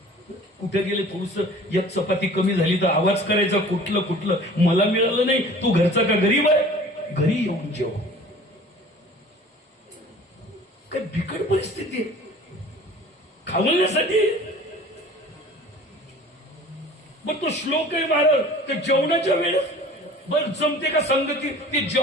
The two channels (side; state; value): both; normal; correlation 0.45